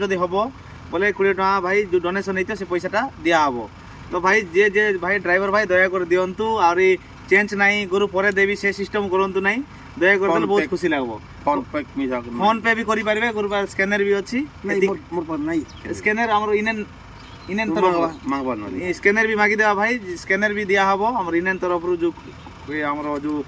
हबो बोले 20 टका भाई जो डोनेशन हेते से पैसाटा दिया हबो। तो भाई जे भाई ड्राइवर भाई दया कर दियंतु और चेंज नहीं गुरु परे देवी से सिस्टम करंतु नहीं दया कर देले बहुत खुशी लागबो। फोन पे भी करि पारबे गुरु पर स्कैनर भी अछि नहीं मोर पर नहीं स्कैनर हमरो इनेन इनेन तरफ मांगबा नहीं स्कैनर भी मागी देबा भाई स्कैनर भी दिया हबो हमर इनेन तरफ रु जो हमरो जो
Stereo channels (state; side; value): identical; both; correlation 1.00